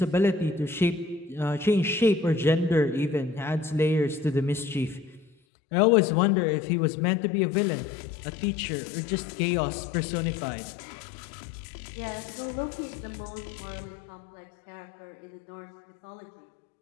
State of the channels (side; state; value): right; drops out; at 5.3 s